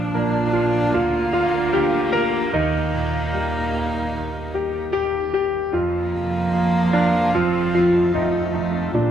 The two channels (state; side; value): noise; left; hum, 21 dB below the sound